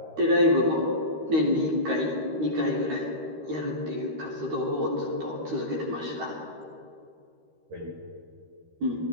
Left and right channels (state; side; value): late; left; 13 ms